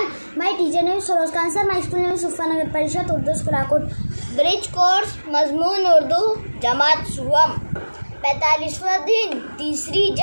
My teacher name is Soroz Khan sir. My school name is Sufa Nagar Parishad Urdu School Akut. Bridge course मजमून उर्दू जमात सुवम 45वां दिन तीसरी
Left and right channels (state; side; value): inverted; both; correlation -1.00